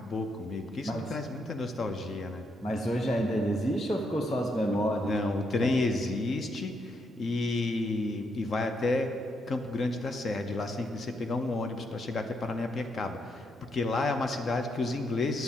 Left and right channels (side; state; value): both; normal; correlation 0.78